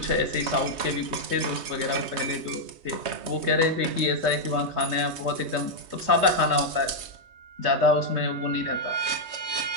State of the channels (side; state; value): left; late; 3.2 ms